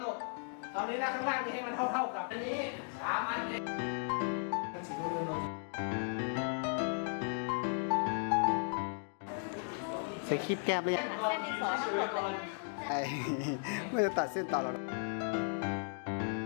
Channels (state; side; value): silent; right; 54 dB below the other